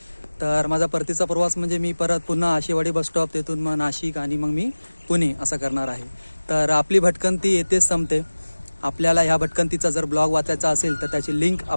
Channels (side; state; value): both; inverted; correlation -1.00